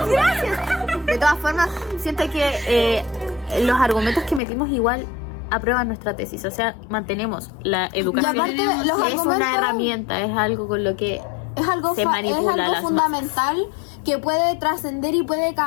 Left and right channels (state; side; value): drops out; right; at 4.4 s